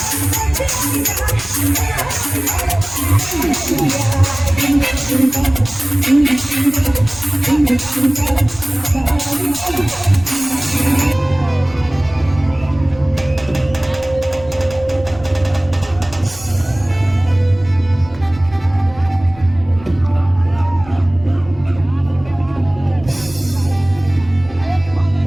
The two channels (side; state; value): right; noise; rumble, 19 dB below the sound